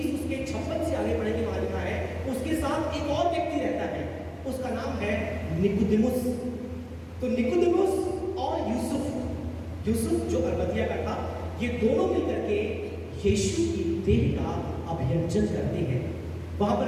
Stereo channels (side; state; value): both; identical; correlation 1.00